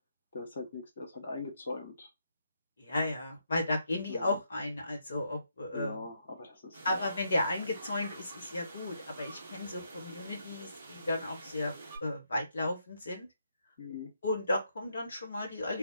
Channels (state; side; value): inverted; both; correlation -0.77